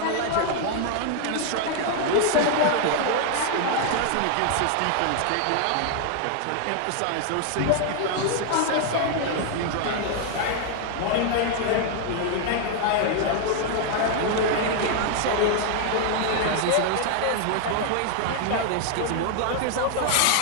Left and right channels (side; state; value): both; different; correlation 0.00